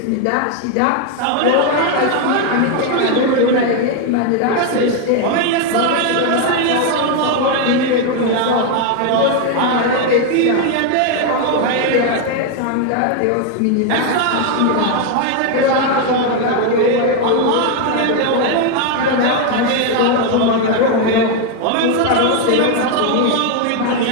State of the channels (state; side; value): different; both; correlation 0.01